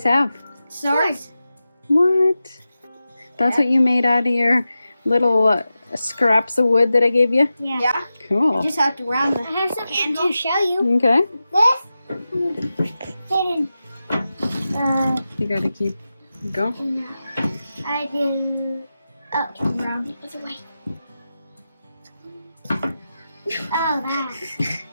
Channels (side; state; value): both; inverted; correlation -0.93